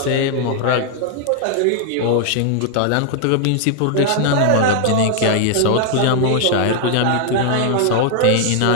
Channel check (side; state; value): both; different; correlation 0.00